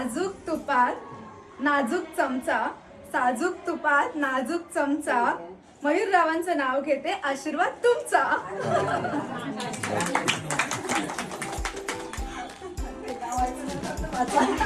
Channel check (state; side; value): identical; both; correlation 1.00